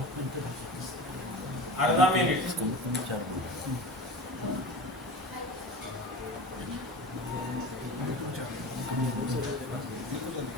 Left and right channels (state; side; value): normal; both; correlation 0.32